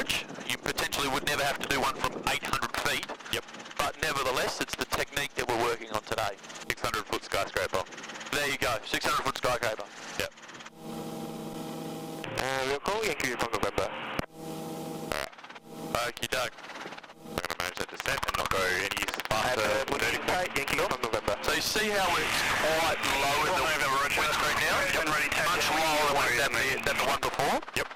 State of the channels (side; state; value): both; identical; correlation 1.00